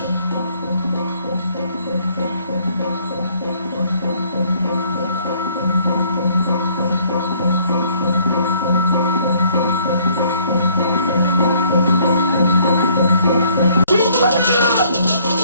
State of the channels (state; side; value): inverted; both; correlation -0.62